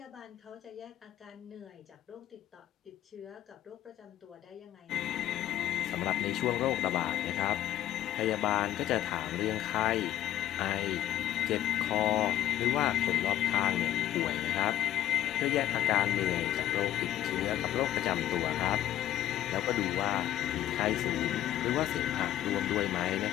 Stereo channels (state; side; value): quieter; right; 12.7 dB